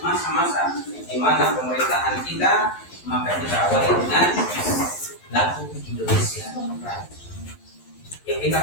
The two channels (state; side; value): late; right; 11 ms